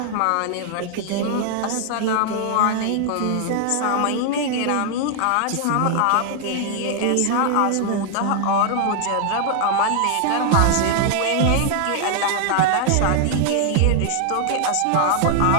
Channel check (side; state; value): both; different; correlation 0.00